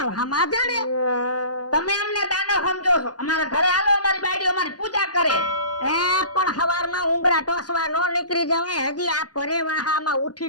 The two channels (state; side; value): late; right; 0.69 ms